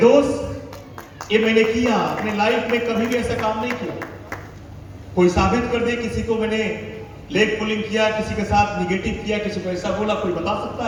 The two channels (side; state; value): both; identical; correlation 1.00